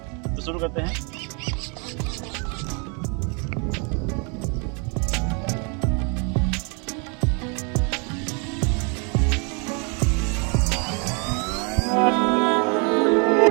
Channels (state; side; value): quieter; left; 34.9 dB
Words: तो शुरू करते हैं।